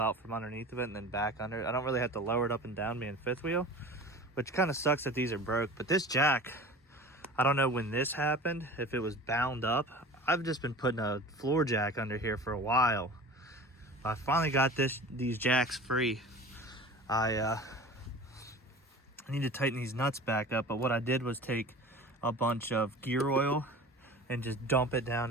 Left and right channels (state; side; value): normal; both; correlation 0.38